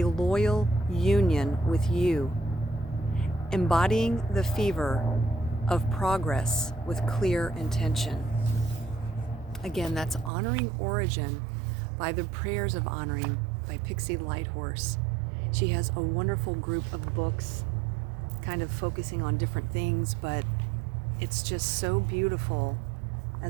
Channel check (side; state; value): left; drops out; at 10.3 s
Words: loyal union with you, embodying the fever of progress with clear intention. Again, that's Honoring Origin by the Prayers of Honoring by Pixie Lighthorses. She has a wonderful group of books kind of focusing on different things, but it's just so beautiful